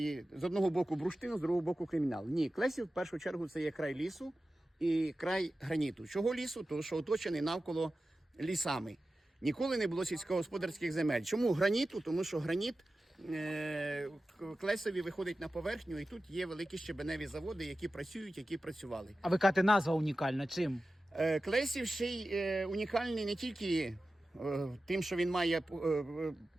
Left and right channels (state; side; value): normal; both; correlation 0.94